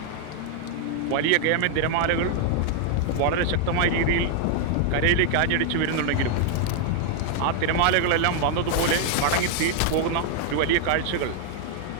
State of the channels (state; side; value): different; both; correlation 0.00